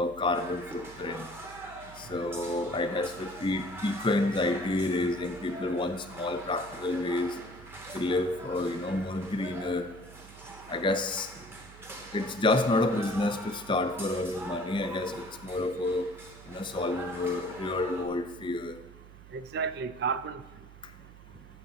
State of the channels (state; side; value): noise; right; hum, 19 dB below the sound